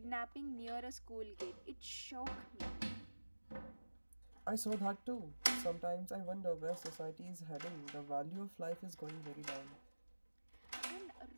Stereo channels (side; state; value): both; inverted; correlation -1.00